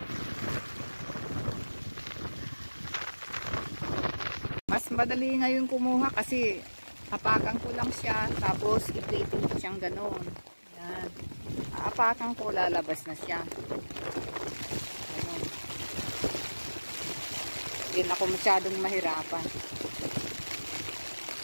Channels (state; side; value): inverted; both; correlation -1.00